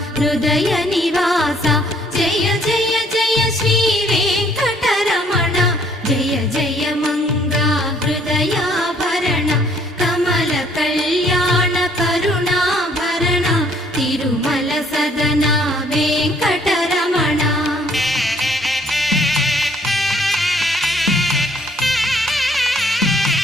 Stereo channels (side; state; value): both; normal; correlation 0.63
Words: హృదయ నివాస జయ జయ జయ శ్రీ వెంకటరమణ జయ జయ మంగ హృదయాభరణ కమల కళ్యాణ కరుణాభరణ తిరుమల సదన వెంకట